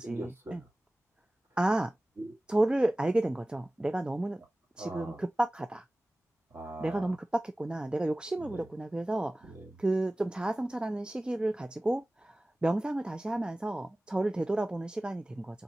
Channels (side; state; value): both; normal; correlation 0.98